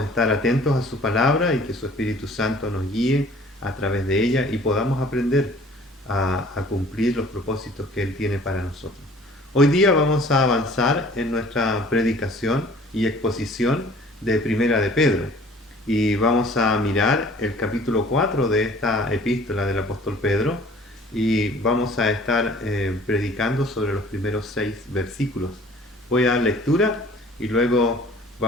estar atentos a su palabra y que su Espíritu Santo nos guíe a través de ella y podamos aprender a cumplir los propósitos que Él tiene para nosotros. Hoy día vamos a avanzar en nuestra predicación y exposición de Primera de Pedro y vamos a mirar el capítulo 4 de esta epístola del apóstol Pedro y vamos a estar predicando sobre los primeros 6 versículos. Voy a dar lectura y luego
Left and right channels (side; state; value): both; normal; correlation 0.51